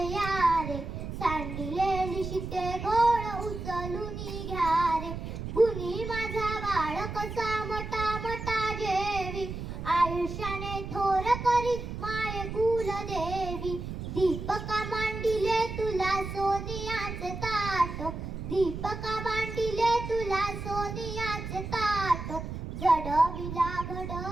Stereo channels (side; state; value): right; noise; rumble, 7 dB below the sound